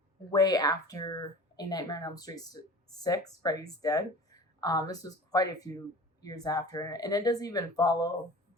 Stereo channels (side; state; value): both; normal; correlation 0.39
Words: way after A Nightmare on Elm Street 6, Freddy's Dead. This was quite a few years after, and it doesn't even follow